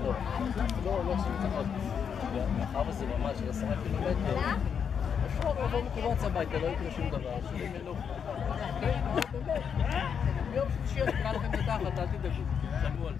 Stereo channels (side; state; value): right; quieter; 7.2 dB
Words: לא עושים מתיחות. מאחר וזה ממש 10 קילומטר, אפשר לבוא מקובץ הביתה, לא יקרה שום דבר. שלי מלוך. ביום שלישי אני אקרא לכם את התחת, אל תדאגו. תשמעו על